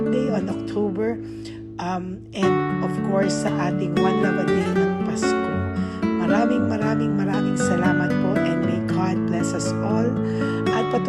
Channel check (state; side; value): identical; both; correlation 1.00